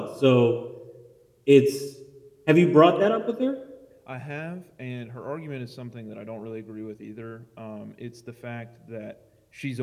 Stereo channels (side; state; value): both; identical; correlation 1.00